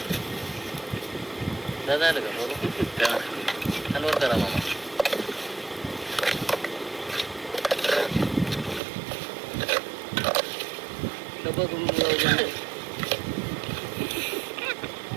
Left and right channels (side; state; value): left; drops out; at 8.8 s